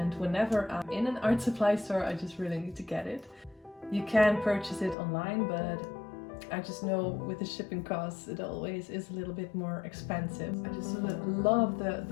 whenever I'm in an art supply store, I just really need to get it. You can purchase it online, but I just know with the shipping costs it always is a little bit more expensive. I just love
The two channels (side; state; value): right; drops out; at 5.0 s